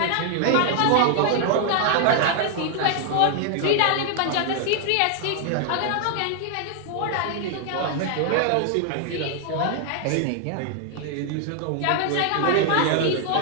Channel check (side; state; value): both; different; correlation 0.00